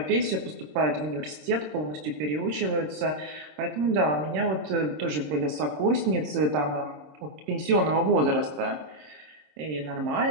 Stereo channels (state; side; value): late; left; 26 ms